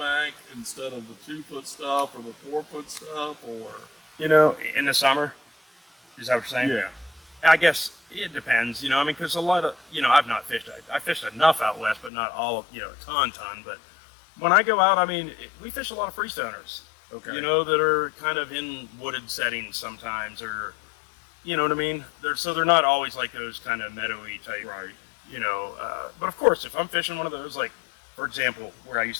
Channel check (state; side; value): drops out; right; at 12.1 s